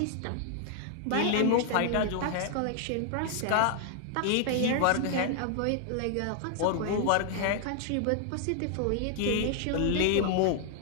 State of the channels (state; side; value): different; both; correlation 0.00